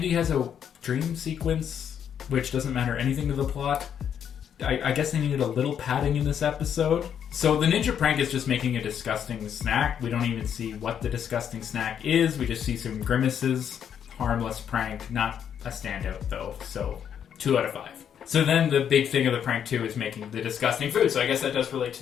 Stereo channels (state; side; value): quieter; right; 8.6 dB